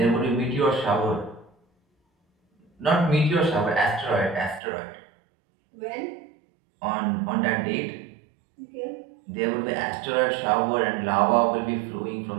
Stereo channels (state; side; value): drops out; left; at 4.6 s